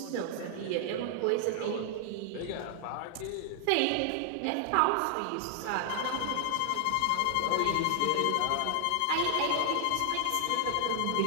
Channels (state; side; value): different; both; correlation 0.00